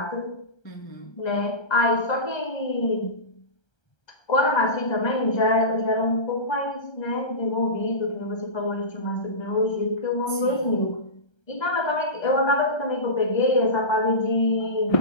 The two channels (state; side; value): late; right; 1.3 ms